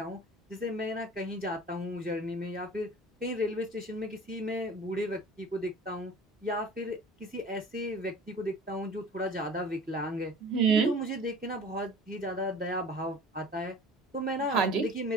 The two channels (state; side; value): normal; both; correlation 0.43